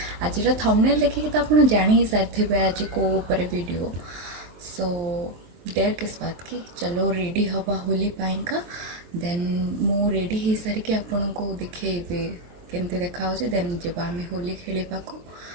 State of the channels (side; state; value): left; late; 23 ms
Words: आज थंबनेल देखिए तो आप जानी ही सारी आज को ऊपर वीडियो सो डेढ़ किस बात की चलो रेडी हवा होली पाइंका देन मु रेडी हो सारिके आपन को देखिए केमती देखा देन जब आम होली खेलवा को